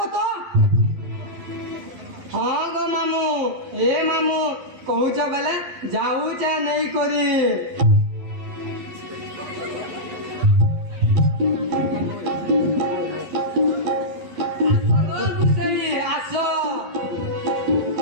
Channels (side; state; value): left; late; 12 ms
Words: তো হ্যাঁ গো মামু এ মামু কହୁଛ বেলে যাউছ নেই করি আসো